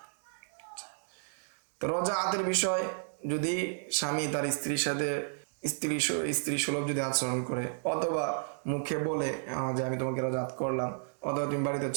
তো রজাআতের বিষয়, যদি স্বামী তার স্ত্রীর সাথে স্ত্রী সুলভ যদি আচরণ করে, অথবা মুখে বলে যে আমি তোমাকে রজাআত করলাম, অথবা তুমি বাড়িতে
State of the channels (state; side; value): silent; left; digital silence